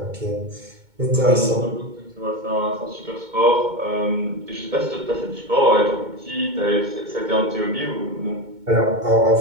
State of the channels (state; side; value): late; left; 2.2 ms